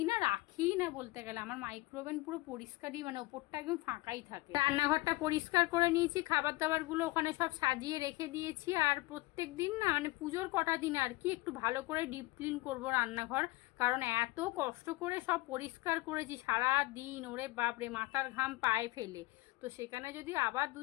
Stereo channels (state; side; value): quieter; right; 21.1 dB